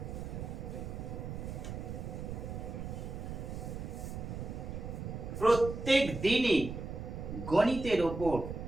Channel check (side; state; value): right; noise; rumble, 6 dB below the sound